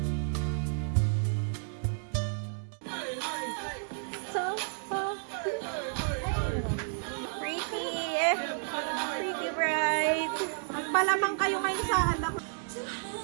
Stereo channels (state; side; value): silent; left; digital silence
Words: So pretty bride. Magpalamang kayo ngayon sa anak.